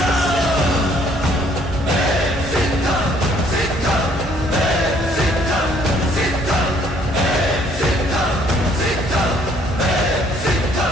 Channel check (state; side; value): normal; both; correlation 0.63